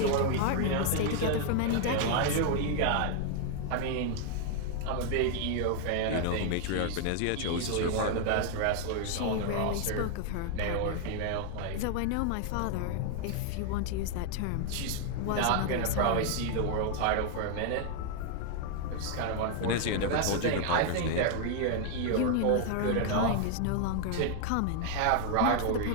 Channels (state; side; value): different; both; correlation 0.00